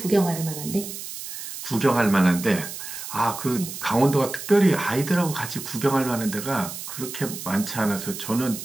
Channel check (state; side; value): noise; right; hiss, 9 dB below the sound